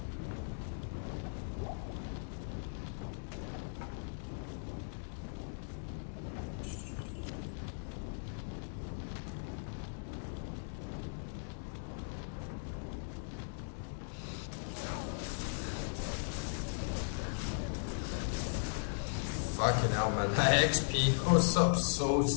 Fucking hell, man. My XP goes up so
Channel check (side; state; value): right; silent; digital silence